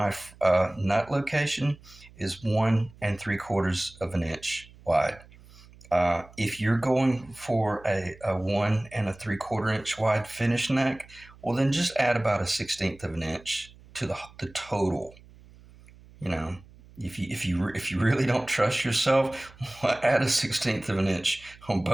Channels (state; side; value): noise; right; hum, 23 dB below the sound